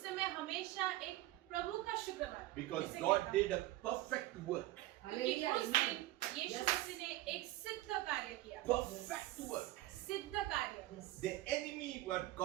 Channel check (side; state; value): left; quieter; 16.6 dB